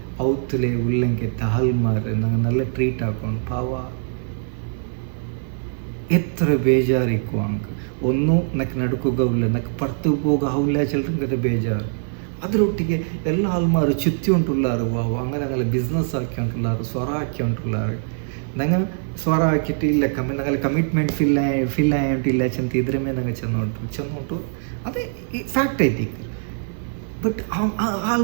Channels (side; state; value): left; silent; 56 dB below the other